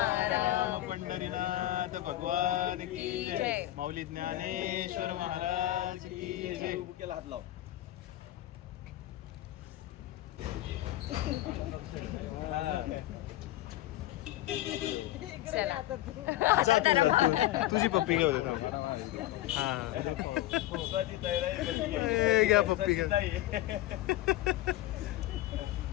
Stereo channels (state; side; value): quieter; right; 15.3 dB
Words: पंढरीनाथ भगवान की जय. जय. माऊली ज्ञानेश्वर महाराज की जय. बुकेला हात लाव चला. आता त्याला भाव. तुझी पप्पी घेऊ दे हा घ्या पप्पी घ्या